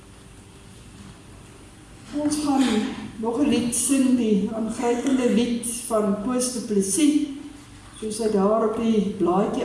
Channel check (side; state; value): both; identical; correlation 1.00